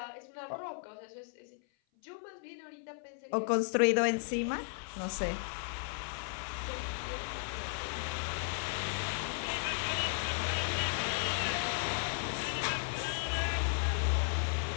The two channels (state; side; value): silent; right; 54 dB below the other